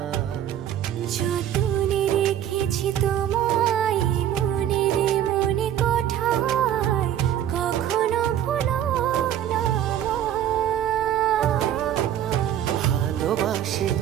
যতনে রেখেছি তোমায় মনের মনে কোঠায়, কখনো ভুলো না আমায়। ভালোবাসি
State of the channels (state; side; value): quieter; left; 10.8 dB